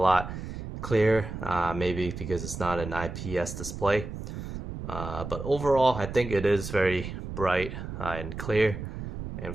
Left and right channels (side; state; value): right; noise; rumble, 8 dB below the sound